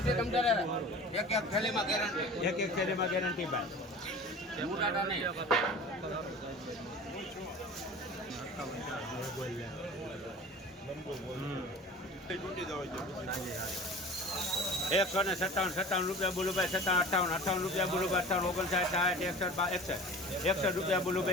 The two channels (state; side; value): normal; both; correlation 0.39